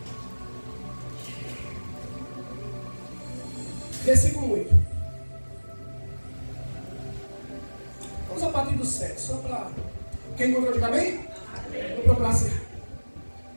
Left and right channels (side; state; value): both; inverted; correlation -1.00